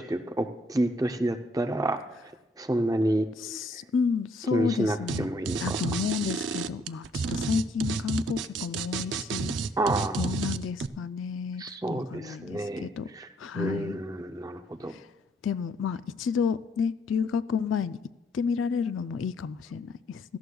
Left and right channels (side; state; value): both; normal; correlation 0.68